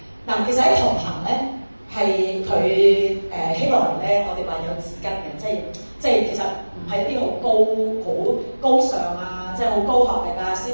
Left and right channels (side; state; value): both; inverted; correlation -1.00